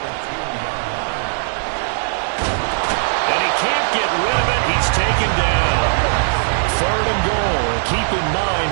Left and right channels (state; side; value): silent; left; digital silence